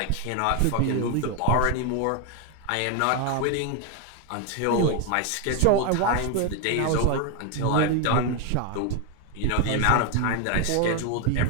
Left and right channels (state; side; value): different; both; correlation 0.01